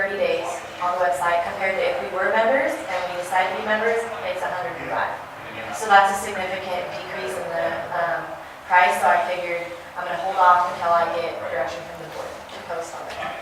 days on the website, compared to if we were members and we decided to be members, it's $105. So that's a significant decrease in the price, so I figured I'm gonna hold off until I get direction from the board to post on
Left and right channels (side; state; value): both; identical; correlation 1.00